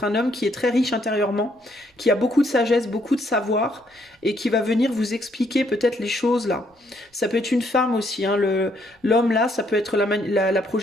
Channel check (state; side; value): normal; both; correlation 0.70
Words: un homme qui est très riche intérieurement, qui a beaucoup de sagesse, beaucoup de savoir, et qui va venir vous expliquer peut-être les choses là. Ça peut être une femme aussi, hein, l'homme là, ça peut être la